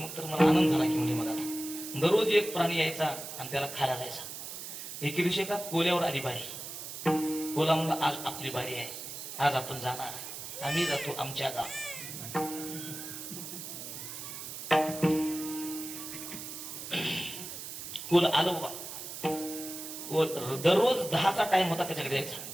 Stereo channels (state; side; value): noise; right; hiss, 9 dB below the sound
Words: तर मला आनंद झाला की म्हणजे मग आता दररोज एक प्राणी यायचा आणि त्याला खायला जायचा. एके दिवशी एका कोल्यावर आली बारी. कोला म्हणला आज आपली बारी आहे, आज आपण जाणार, आम्ही जातो आमच्या गाव. कोल आलो बा. कोल दररोज 10चा टाइम होता त्याच्याकडे यायचा,